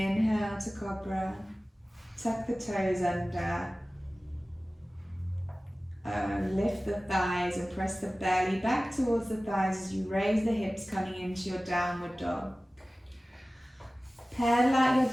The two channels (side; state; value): both; normal; correlation 0.97